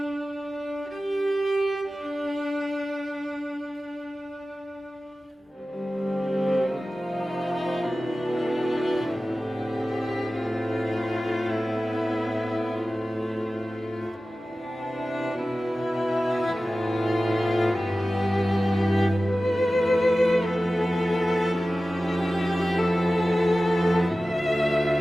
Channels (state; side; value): normal; both; correlation 0.95